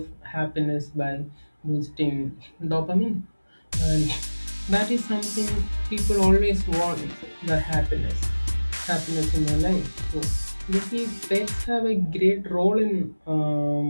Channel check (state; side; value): inverted; both; correlation -1.00